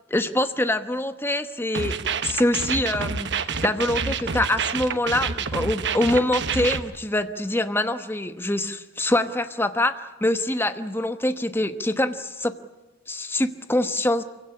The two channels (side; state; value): both; normal; correlation 0.61